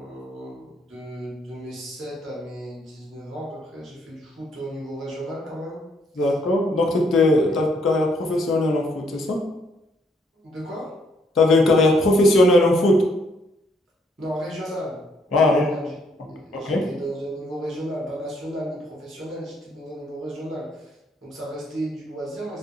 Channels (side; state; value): both; normal; correlation 0.70